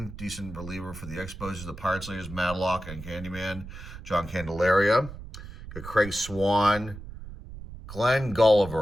decent reliever for the Expos, the Pirates leaders, Madlock and Candyman. John Candelaria. Got Craig Swan. Glenn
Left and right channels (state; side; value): noise; right; rumble, 13 dB below the sound